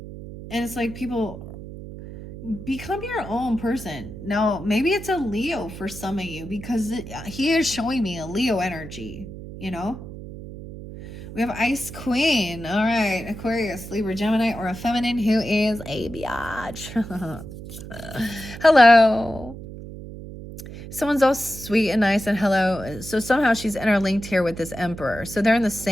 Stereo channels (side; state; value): right; noise; hum, 12 dB below the sound